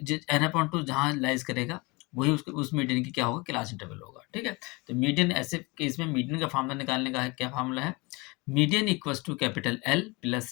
एन अपॉन टू जहाँ लाइज करेगा वही उस मीडियन की क्या होगा, क्लास इंटरवल होगा, ठीक है। तो मीडियन ऐसे केस में मीडियन का फार्मूला निकालने का है, क्या फार्मूला है? Median equals to capital L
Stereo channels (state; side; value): quieter; right; 26.0 dB